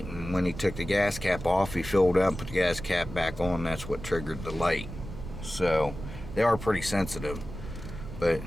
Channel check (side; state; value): right; noise; rumble, 10 dB below the sound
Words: and when he took the gas cap off, he filled up and put the gas cap back on. That's what triggered the light. So they are pretty sensitive. But